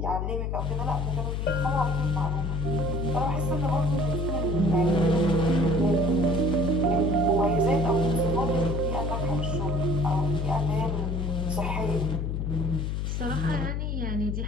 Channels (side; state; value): left; noise; hum, 1 dB below the sound